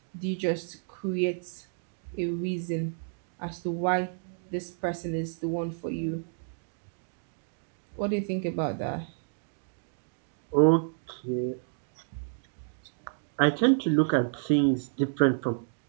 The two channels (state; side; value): silent; left; digital silence